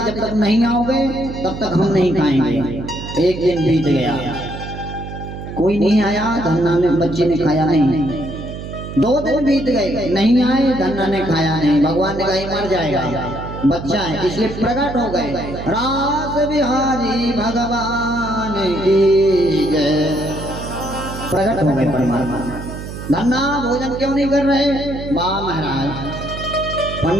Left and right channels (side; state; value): right; noise; hum, 9 dB below the sound